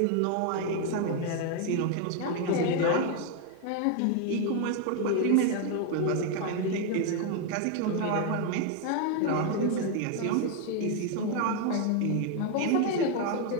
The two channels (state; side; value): different; both; correlation 0.01